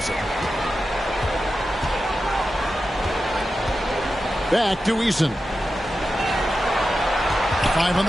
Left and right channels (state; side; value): normal; both; correlation 0.91